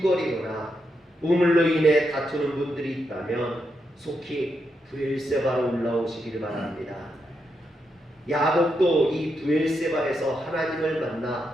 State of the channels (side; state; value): both; normal; correlation 0.83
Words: 우물로 인해 다투는 분들이 있다면 속히 부엘세바로 올라오시기를 바랍니다. 야곱도 이 부엘세바에서 하나님을